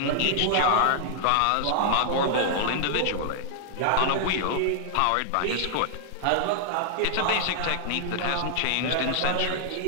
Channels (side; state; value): both; different; correlation 0.00